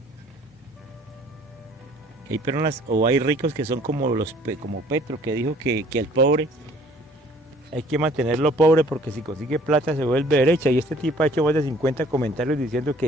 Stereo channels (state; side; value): normal; both; correlation 0.55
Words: hay personas o hay ricos que son como Petro, que dijo que el pobre hay que mantenerlo pobre porque si consigue plata se vuelve derecha, y este tipo ha hecho más de 50 comentarios diciendo